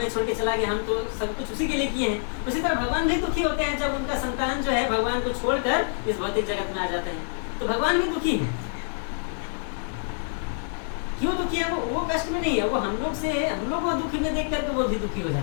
छोड़ के चला गया, हम तो सब कुछ उसी के लिए किए हैं। उसी तरह भगवान भी दुखी होते हैं जब उनका संतान जो है भगवान को छोड़कर इस भौतिक जगत में आ जाते हैं। तो भगवान भी दुखी है। क्यों दुखी है? वो कष्ट में नहीं है, वो हम लोग को दुखी में देख करके वो भी दुखी हो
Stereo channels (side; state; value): right; silent; 61 dB below the other